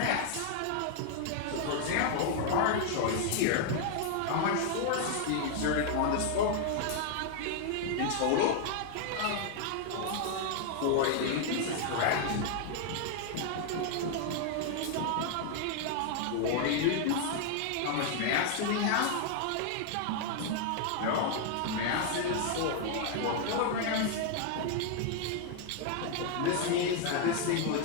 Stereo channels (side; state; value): both; different; correlation 0.00